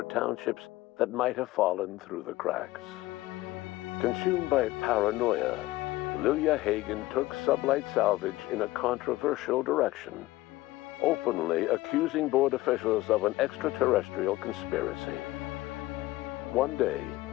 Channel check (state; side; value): quieter; right; 18.0 dB